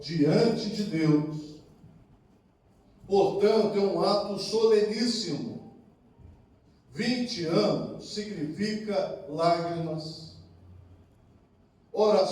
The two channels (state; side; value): identical; both; correlation 1.00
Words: diante de Deus. Portanto, é um ato soleníssimo. 20 anos significa lágrimas,